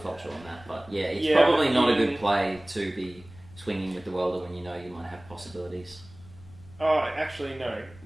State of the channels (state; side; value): noise; left; rumble, 21 dB below the sound